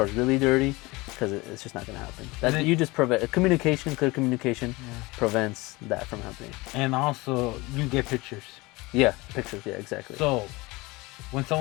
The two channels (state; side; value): quieter; right; 22.8 dB